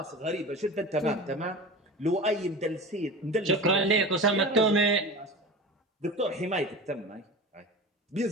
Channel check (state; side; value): normal; both; correlation 0.32